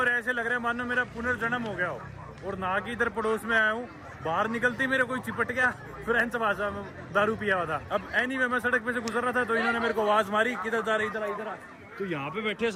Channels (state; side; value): identical; both; correlation 1.00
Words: ऐसे लग रहा है मानो मेरा पुनर्जन्म हो गया हो। और नहा के इधर पड़ोस में आया हूँ, बाहर निकलते मेरे कोई चिपट गया, फ्रेंच भाषा में दारू पिया हुआ था। अब एनीवे मैं सड़क पे से गुजर रहा था, तो इन्होंने मेरे को आवाज मारी, किधर जा रहे, इधर आ। तो यहाँ पे बैठे